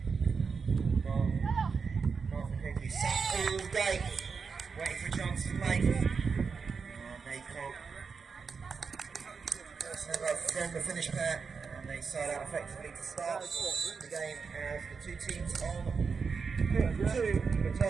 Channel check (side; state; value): left; quieter; 5.4 dB